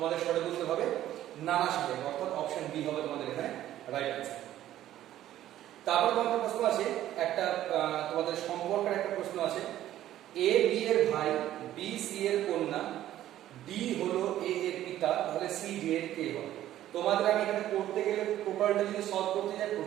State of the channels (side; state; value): left; quieter; 12.9 dB